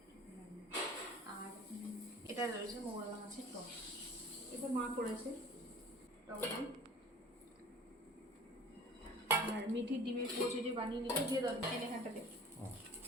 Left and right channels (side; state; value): both; normal; correlation 0.44